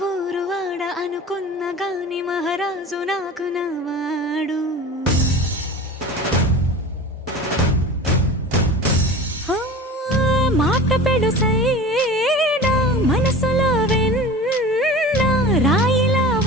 ఊరు వాడ అనుకున్న గాని మహారాజు నాకు నవ్వాడు. మాట పెడుసైనా మనసులో వెన్న రాయిలా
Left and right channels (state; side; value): normal; both; correlation 0.36